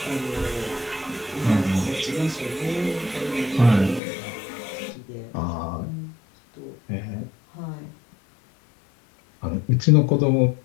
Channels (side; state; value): right; drops out; at 4.0 s